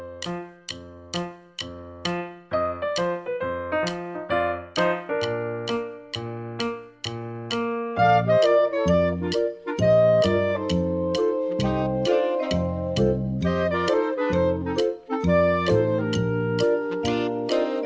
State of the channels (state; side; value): identical; both; correlation 1.00